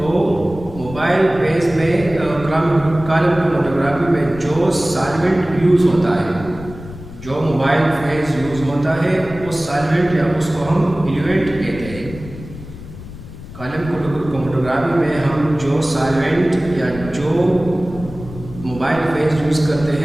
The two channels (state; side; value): noise; left; rumble, 14 dB below the sound